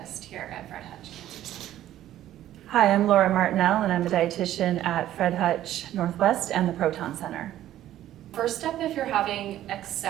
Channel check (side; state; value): left; quieter; 12.8 dB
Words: here at Fred Hutch Cancer Center. Hi, I'm Laura Martinell, and I'm a dietitian at Fred Hutch Northwest and the Proton Center. First step if you're having